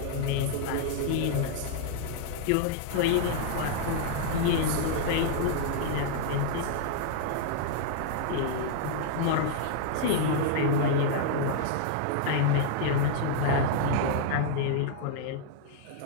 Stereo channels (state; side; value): different; both; correlation -0.01